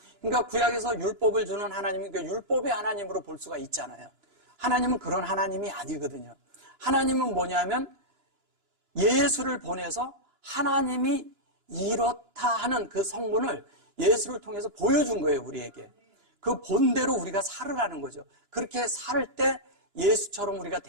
그러니까 구약에서 율법을 주는 하나님이 그 율법의 하나님으로 볼 수가 있잖아요. 하나님은 그런 하나님이 아니거든요. 하나님은 뭐냐면 예수를 보내서 하나님이 이렇다 하는 그 성분을 예수를 통해서 보여준 거예요, 우리에게. 그 본대로 우리가 살으라는 거죠. 그렇게 살 때 예수처럼 우리가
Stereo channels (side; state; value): left; late; 2.9 ms